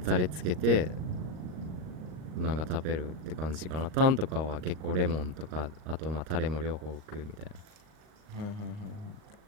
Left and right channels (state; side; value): late; left; 38 ms